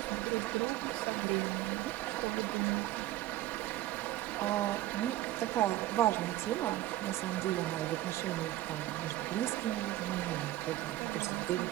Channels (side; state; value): left; quieter; 15.3 dB